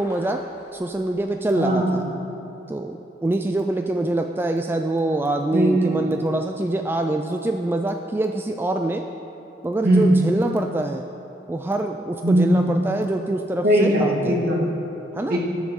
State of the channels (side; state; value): both; normal; correlation 0.77